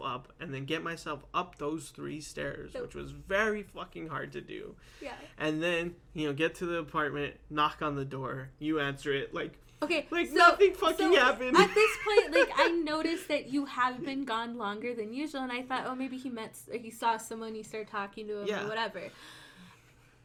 up and then get myself up those 3 stairs, which was very fucking hard to do. Yeah. And then, get to the apartment, knock on the door, you answer it, like, okay, like nothing fucking happened. At this point, like, I noticed that you have been gone longer than usual, and I thought, oh, maybe he saw someone, he started talking to him or whatever.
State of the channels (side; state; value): both; identical; correlation 1.00